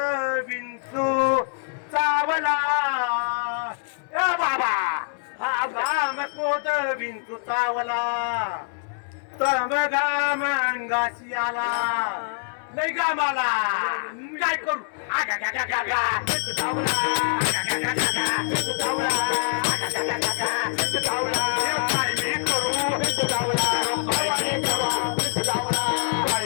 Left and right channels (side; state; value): right; silent; 62 dB below the other